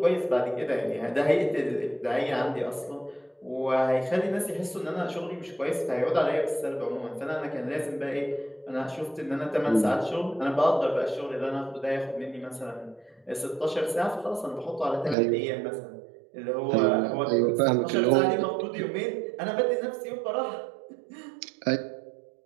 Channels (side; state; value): left; drops out; at 15.2 s